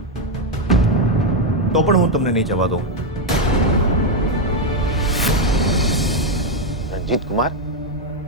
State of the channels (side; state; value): both; normal; correlation 0.05